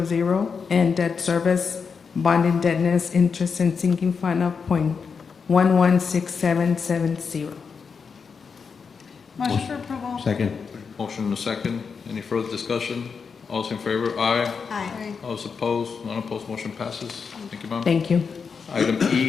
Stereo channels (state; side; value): quieter; right; 5.7 dB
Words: and debt service, bond indebtedness, interest, and sinking fund of 0.116770. Motion for approval. Second. Motion and a second. Any further discussion? All those in favor, aye. Aye. All those opposed? None opposed. Motion passes. Thank you, ma'am. Thank you. Item